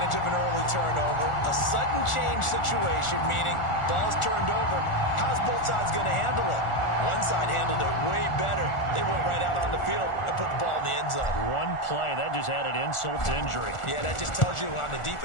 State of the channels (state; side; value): late; right; 1.4 ms